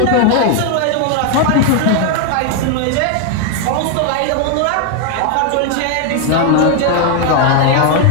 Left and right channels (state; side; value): different; both; correlation 0.01